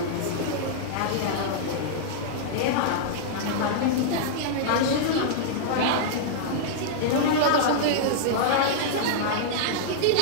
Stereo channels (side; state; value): both; different; correlation -0.02